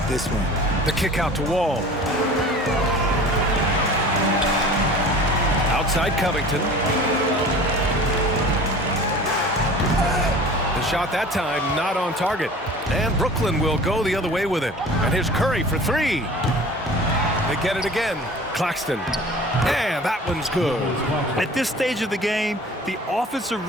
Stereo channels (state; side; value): normal; both; correlation 0.42